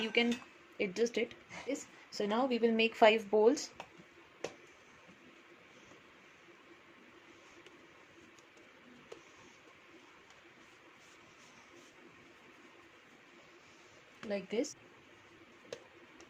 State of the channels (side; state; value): both; identical; correlation 1.00